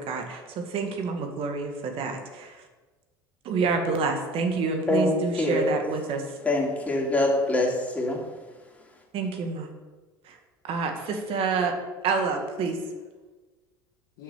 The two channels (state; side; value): normal; both; correlation 0.44